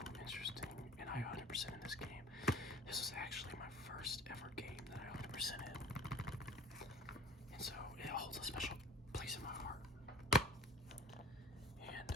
interesting, and I 100% in this game. This was actually my first ever game that I 100% in. And so it holds a special place in my heart. And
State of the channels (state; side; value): normal; both; correlation 0.45